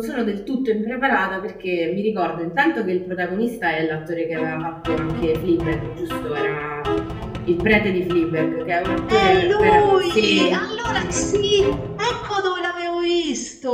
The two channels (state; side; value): identical; both; correlation 1.00